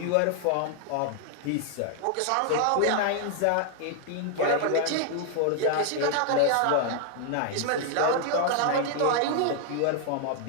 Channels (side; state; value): both; different; correlation 0.00